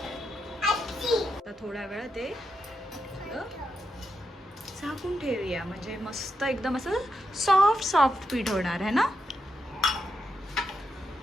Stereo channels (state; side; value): normal; both; correlation 0.84